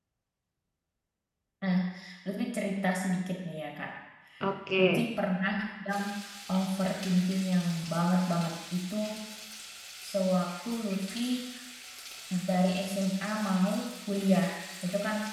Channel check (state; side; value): identical; both; correlation 1.00